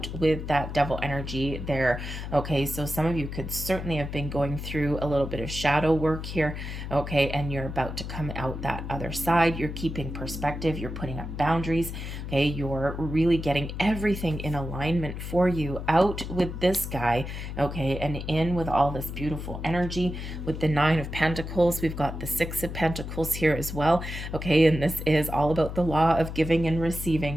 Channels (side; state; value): left; noise; hum, 7 dB below the sound